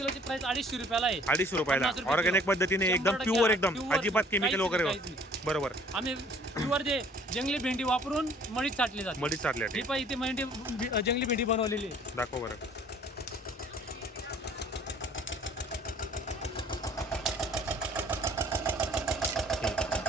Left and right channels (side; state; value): both; normal; correlation 0.54